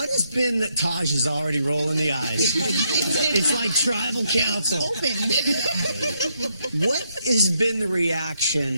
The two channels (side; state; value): both; inverted; correlation -0.77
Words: has been that Taj is already rolling the eyes? It's like tribal council. Open. What has been the